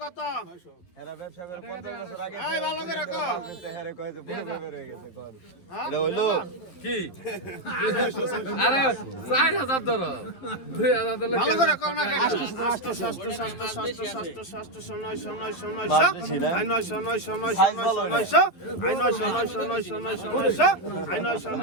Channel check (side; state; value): right; late; 11 ms